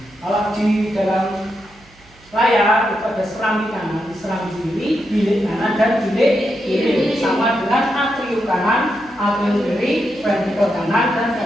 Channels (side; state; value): right; noise; hum, 27 dB below the sound